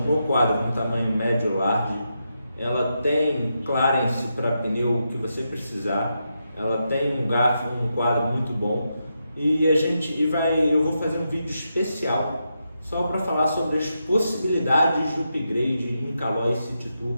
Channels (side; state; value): both; inverted; correlation -0.85